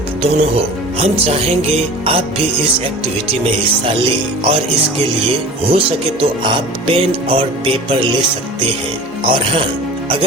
दोनों हो। हम चाहेंगे आप भी इस एक्टिविटी में हिस्सा लें और इसके लिए हो सके तो आप पेन और पेपर ले सकते हैं। और हाँ,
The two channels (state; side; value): normal; both; correlation 0.39